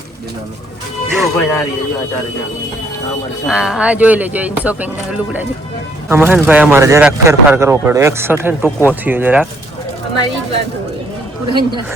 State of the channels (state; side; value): normal; both; correlation 0.65